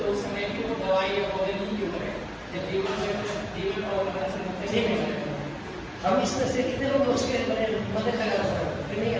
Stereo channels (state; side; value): identical; both; correlation 1.00